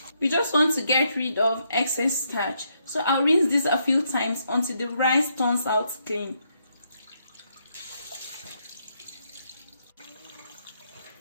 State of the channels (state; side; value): inverted; both; correlation -0.77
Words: We just want to get rid of excess starch, so I'll rinse this a few times until the rice turns out clean.